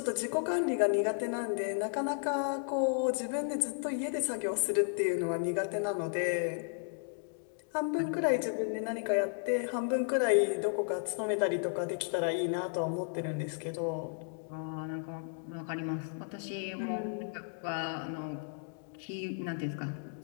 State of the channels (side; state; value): right; silent; digital silence